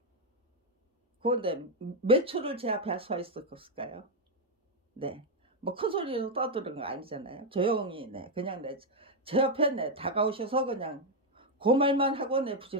그 몇 초를 제 앞에 서 있었을까요? 뭐 큰 소리로 떠드는 거 아니잖아요. 조용히 그냥 제 옆에 다가오셔서 그냥 그 말만 하고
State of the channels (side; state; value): both; normal; correlation 0.02